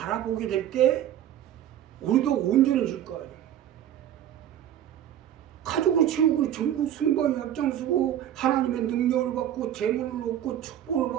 될 때 우리도 온전해질 거 아니에요. 가족을 채우고 전국 승방에 앞장서고 하나님의 능력을 받고 재물을 얻고 축복을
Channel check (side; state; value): left; quieter; 11.0 dB